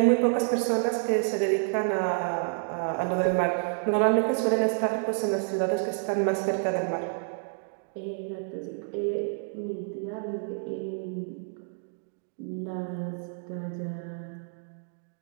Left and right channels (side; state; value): left; silent; digital silence